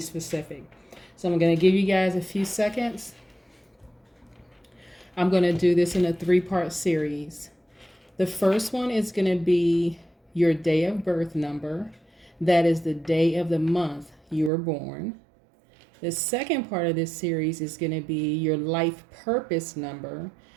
So I'm going to give you guys a few seconds. I'm going to do this in a 3-part series. The first one is going to be your day of birth number. That is the day of the month you were born. The second part of this series is going to be your life purpose number.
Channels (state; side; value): drops out; left; at 14.5 s